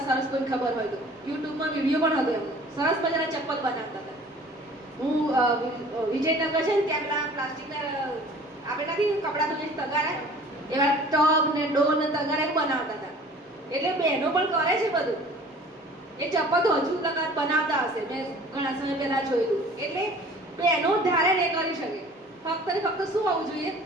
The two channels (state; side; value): normal; both; correlation 0.48